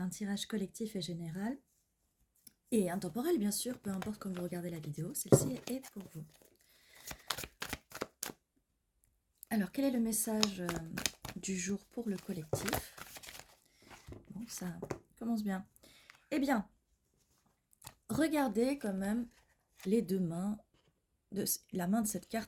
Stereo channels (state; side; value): identical; both; correlation 1.00